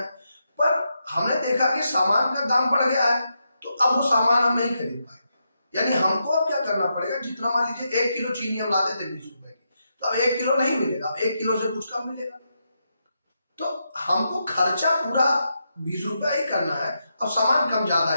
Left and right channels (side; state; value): both; inverted; correlation -0.84